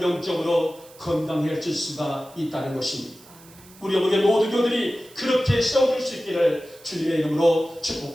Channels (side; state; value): right; noise; hiss, 24 dB below the sound